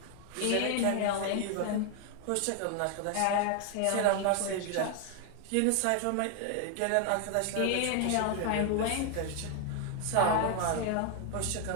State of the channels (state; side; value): different; both; correlation 0.00